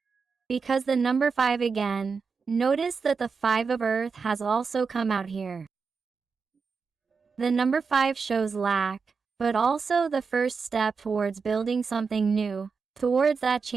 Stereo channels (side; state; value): left; quieter; 5.2 dB